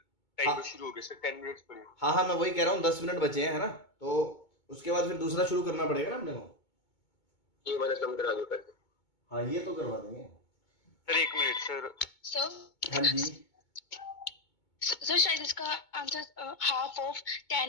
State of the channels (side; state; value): right; late; 2.2 ms